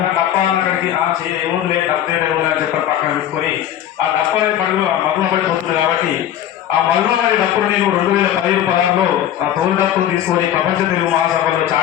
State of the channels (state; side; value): quieter; right; 11.2 dB